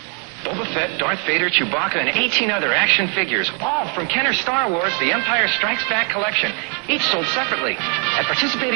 Boba Fett, Darth Vader, Chewbacca, and 18 other action figures, all from Kenner Star Wars The Empire Strikes Back collection, each sold separately. At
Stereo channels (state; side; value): quieter; left; 35.2 dB